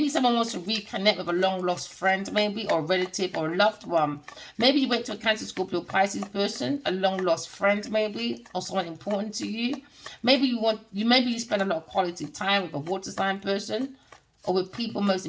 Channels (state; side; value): identical; both; correlation 1.00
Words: someone wants to reconnect with a long lost friend, maybe, or a relative or a loved one. Maybe you went to a Cancer, Scorpio, Pisces person, a long lost friend, maybe, or someone important to you. Maybe you spend a lot of quality time with a water sign person, or with people most